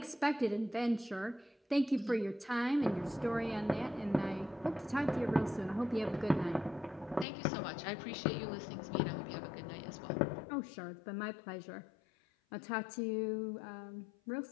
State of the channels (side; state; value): right; drops out; at 7.2 s